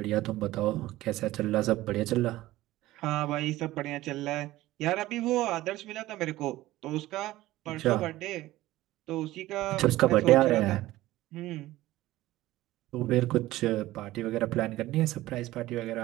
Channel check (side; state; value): left; quieter; 16.6 dB